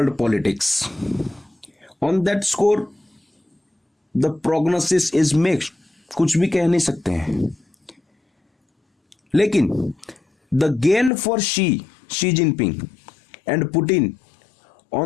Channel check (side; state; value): right; drops out; at 11.1 s